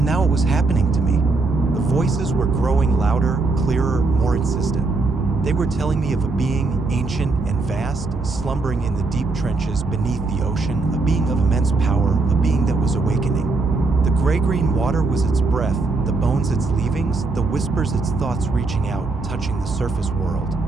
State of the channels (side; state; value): left; quieter; 3.6 dB